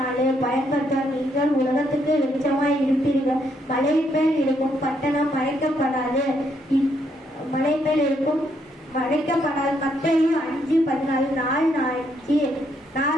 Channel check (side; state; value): both; normal; correlation 0.74